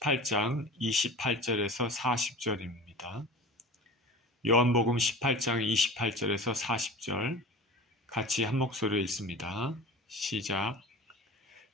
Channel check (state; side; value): normal; both; correlation 0.36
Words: 28절에서 40절입니다. 요한복음 18장 28절에서 40절 같이 한 목소리로 읽습니다. 시작.